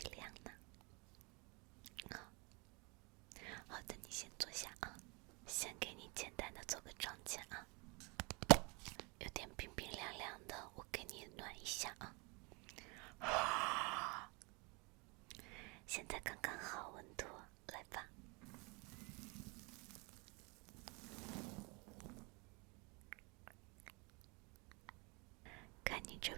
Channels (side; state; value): left; quieter; 29.7 dB